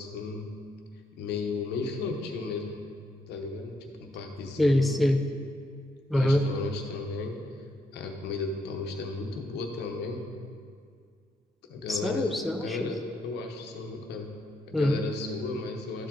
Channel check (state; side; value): normal; both; correlation 0.76